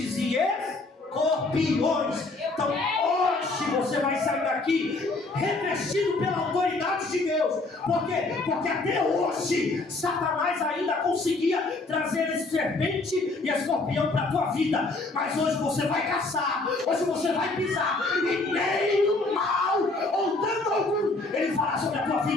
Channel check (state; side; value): quieter; right; 3.3 dB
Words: e escorpiões. Então hoje você vai sair daqui revestido pela autoridade de Deus. Por quê? Porque até hoje Satanás ainda conseguia trazer esse serpente e escorpião para a tua vida. Mas hoje você vai caçar, hoje você vai pisar, e nem o mal ou dano algum ele fará sobre a tua